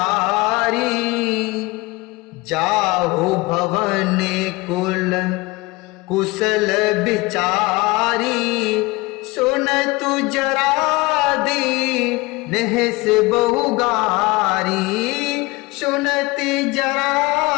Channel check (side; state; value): right; quieter; 23.1 dB